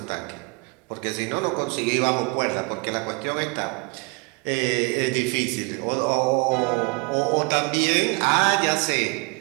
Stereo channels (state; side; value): quieter; left; 30.7 dB